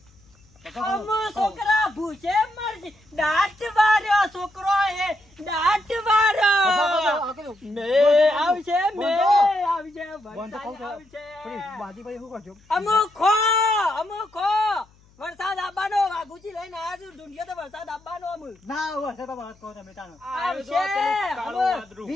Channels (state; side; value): noise; left; hum, 30 dB below the sound